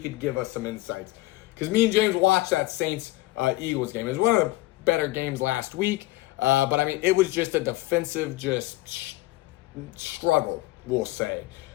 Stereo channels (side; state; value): right; quieter; 19.2 dB